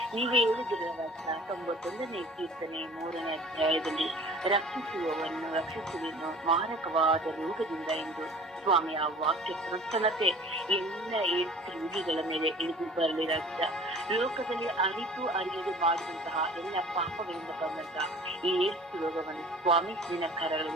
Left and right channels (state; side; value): normal; both; correlation 0.46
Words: ನೀವೇ ಹೇಳಿದಿರಲ್ಲ 91ನೇ ಕೀರ್ತನೆ 3ನೇ ಅಧ್ಯಾಯದಲ್ಲಿ, ರಕ್ಷಿಸುವೆನು ಮಾರಕವಾದ ರೋಗದಿಂದ ಎಂದು ಸ್ವಾಮಿ ಆ ವಾಕ್ಯ ಪ್ರಸನ್ನತೆ ಎಲ್ಲ ಏಡ್ಸ್ ರೋಗಿಗಳ ಮೇಲೆ ಇಳಿದು ಬರಲಿ ರಾಜ್ಯ. ಲೋಕದಲ್ಲಿ ಅರಿತು ಅರಿಯದೆ ಮಾಡಿದಂತಹ ಎಲ್ಲ ಪಾಪಗಳಿಂದ ಬಂದಂತಹ ಈ ಏಡ್ಸ್ ರೋಗವನ್ನು ಸ್ವಾಮಿ ನಿನ್ನ